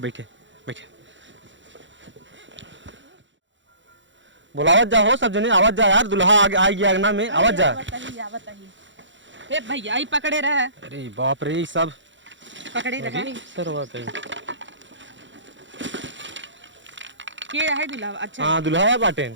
बैठे बैठे। बुलावत जा हो सब जने, आवाज जा यार, दुल्हा आ गया अंगना में, आवाज जा। आवत ही हे भैया ही पकड़े रहे। अरे बाप रे सब पकड़े रहे सरवा कहीं। के है दुल्हा? अच्छा हाँ दुल्हा है बाटे,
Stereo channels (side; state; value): left; late; 0.54 ms